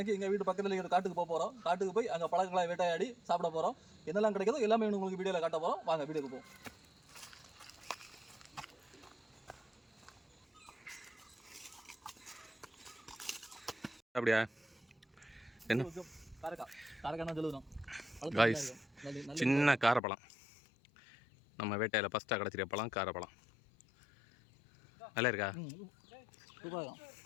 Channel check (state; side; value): drops out; right; at 20.0 s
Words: எங்கள் வீட்டு பக்கத்தில் இருக்கிற காட்டுக்கு போக போகிறோம். காட்டுக்கு போய் அங்கே பழங்களை வேட்டையாடி சாப்பிட போகிறோம். என்னெல்லாம் கிடைக்குதோ எல்லாமே உங்களுக்கு வீடியோவில் காட்ட போகிறோம். வாங்க வீடியோக்கு போவோம். அப்படியா? என்ன காரக்காய் சொல்லுவோம். சின்ன காரப்பழம், நம்ம வேட்டையில் ஃபஸ்ட்டாக கிடச்சிருக்க பழம் காரப்பழம். நல்லா இருக்கா? இப்போ